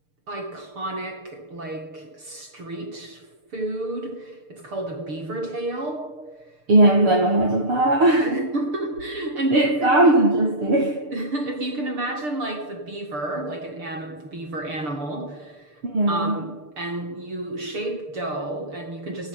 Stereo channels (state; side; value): late; left; 6.7 ms